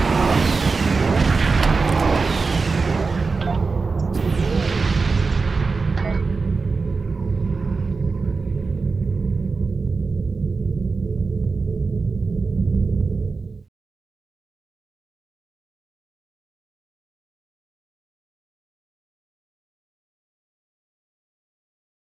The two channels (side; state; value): left; quieter; 4.3 dB